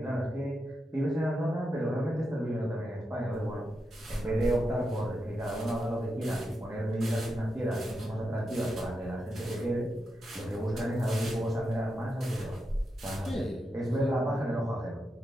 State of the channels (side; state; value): both; normal; correlation 0.86